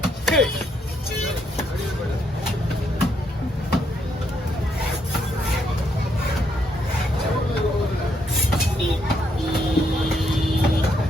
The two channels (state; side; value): normal; both; correlation 0.75